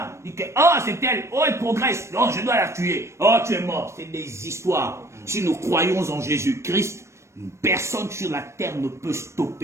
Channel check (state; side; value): late; left; 0.13 ms